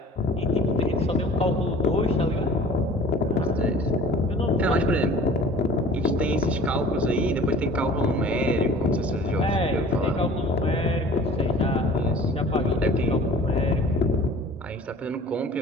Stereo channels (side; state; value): both; normal; correlation 0.46